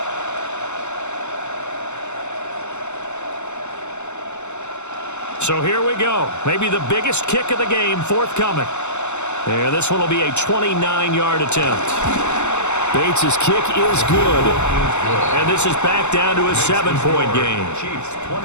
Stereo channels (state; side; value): late; right; 0.82 ms